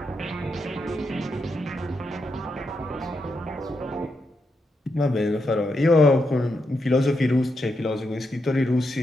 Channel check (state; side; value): normal; both; correlation 0.83